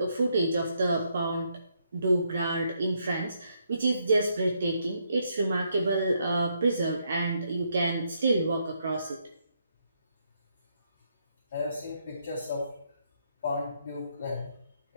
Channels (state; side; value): inverted; both; correlation -0.75